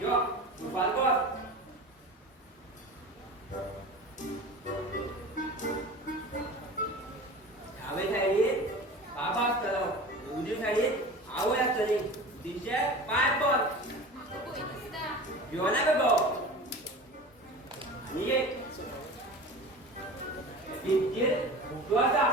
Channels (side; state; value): both; normal; correlation 0.35